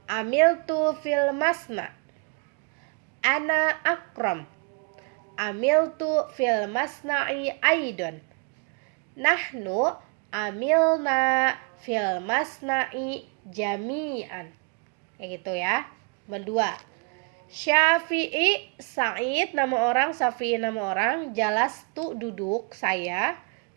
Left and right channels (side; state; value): left; quieter; 35.7 dB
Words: Amil tu fil masna. Ana akrom. Amiltu fil masna'i aidon. Nahnu amilna fil masna'i jami'an. Kayak gitu ya. Kedua, Syafi'i Sa'id nama orang, Syafi'i nama orang, jalastu duduk saya,